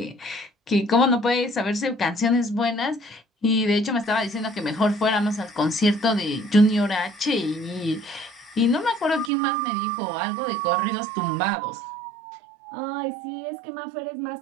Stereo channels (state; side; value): drops out; left; at 9.3 s